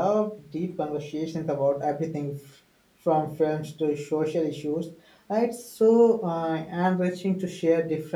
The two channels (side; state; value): both; identical; correlation 1.00